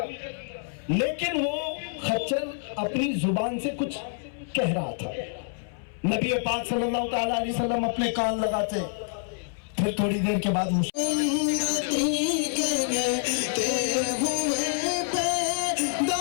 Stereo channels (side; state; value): right; silent; 60 dB below the other